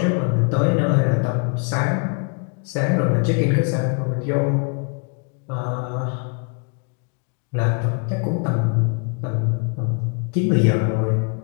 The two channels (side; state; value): right; quieter; 38.0 dB